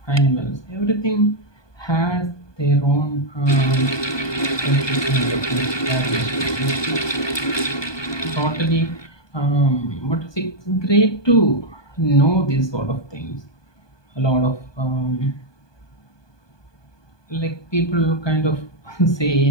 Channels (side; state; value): right; late; 1.2 ms